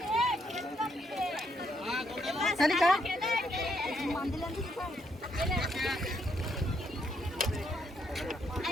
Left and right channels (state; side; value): normal; both; correlation 0.75